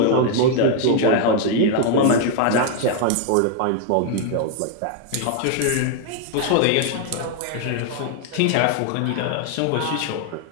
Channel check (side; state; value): both; different; correlation 0.00